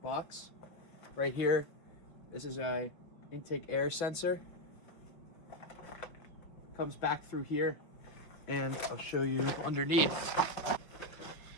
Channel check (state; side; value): late; right; 5.6 ms